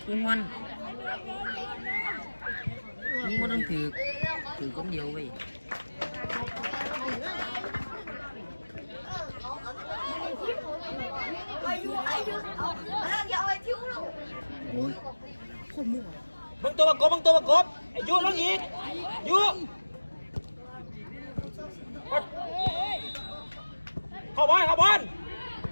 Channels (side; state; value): both; inverted; correlation -1.00